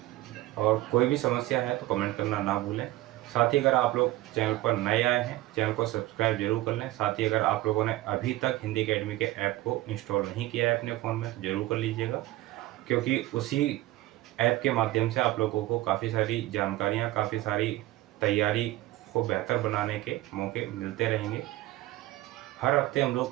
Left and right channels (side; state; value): left; quieter; 17.0 dB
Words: और कोई भी समस्या है तो कमेंट करना ना भूलें। साथ ही अगर आप लोग चैनल पर नए आए हैं, चैनल को सब्सक्राइब जरूर कर लें। साथ ही अगर आप लोगों ने अभी तक हिंदी अकेडमी के ऐप को इंस्टॉल नहीं किया है अपने फ़ोन में तो ज़रूर कर लीजिएगा, क्योंकि उसी ऐप के माध्यम से आप लोगों को काफ़ी सारी जानकारियाँ, काफ़ी सारी तैयारी को बेहतर बनाने के मौके मिलते रहेंगे। हर हफ्ते हम